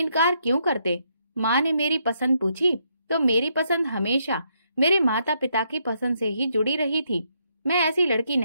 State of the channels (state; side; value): inverted; both; correlation -0.76